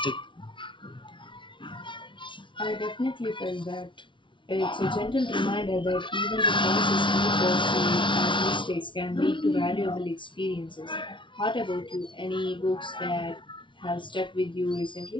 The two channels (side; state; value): right; late; 0.24 ms